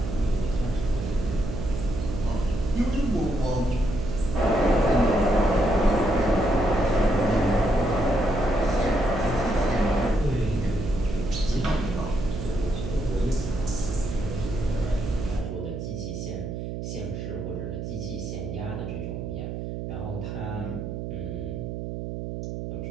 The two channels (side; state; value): right; noise; hum, 6 dB below the sound